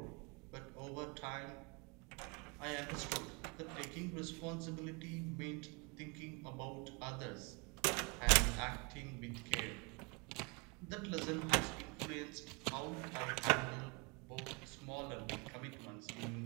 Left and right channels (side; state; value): left; quieter; 30.4 dB